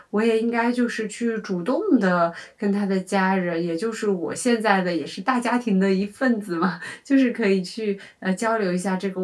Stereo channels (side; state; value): both; identical; correlation 1.00